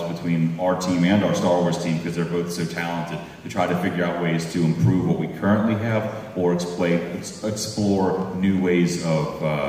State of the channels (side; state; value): both; identical; correlation 1.00